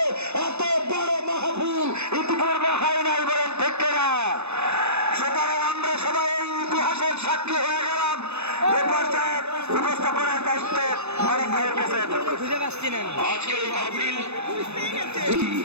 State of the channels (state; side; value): late; left; 0.81 ms